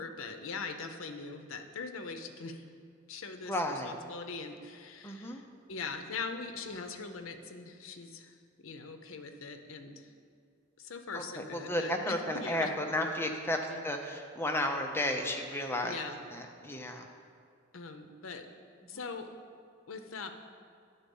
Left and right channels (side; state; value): both; normal; correlation 0.29